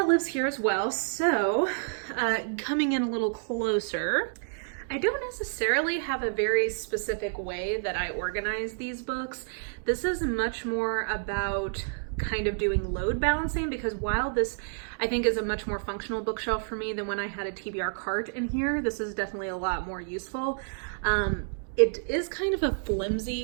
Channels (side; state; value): left; silent; digital silence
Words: lives here as well. So coming in a little closer, I don't necessarily have a very specific way that I organize these books. This is much more about kind of doing load balancing, because while this I think is a much more functional bookshelf for me than when I had a TBR cart in here, this is definitely a lot more useful. It is kind of a